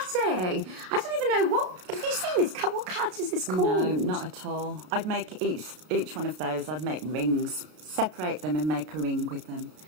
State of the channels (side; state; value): left; late; 33 ms